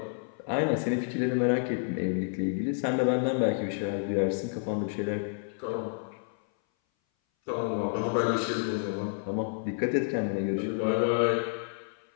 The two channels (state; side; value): silent; right; 57 dB below the other